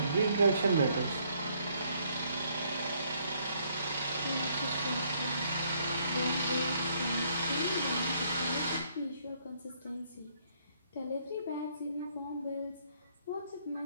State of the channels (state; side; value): inverted; both; correlation -0.68